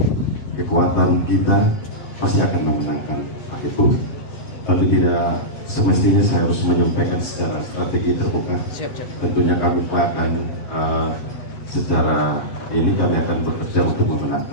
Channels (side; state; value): right; late; 7.3 ms